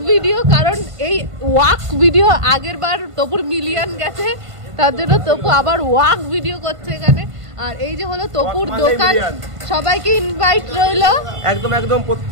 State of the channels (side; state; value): left; late; 1.5 ms